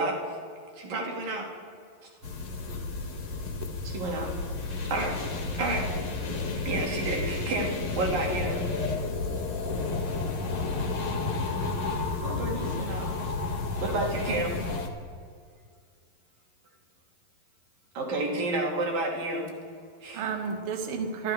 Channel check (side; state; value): left; late; 11 ms